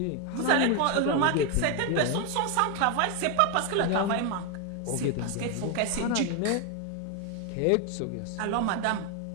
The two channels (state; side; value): different; both; correlation 0.01